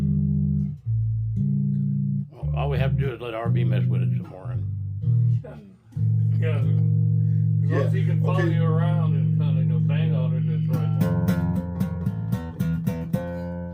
Well, all we have to do is let RB mess with it some more. And Yeah, as long as he can follow okay. you around and kind of bang on it, that's right.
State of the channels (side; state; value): both; identical; correlation 1.00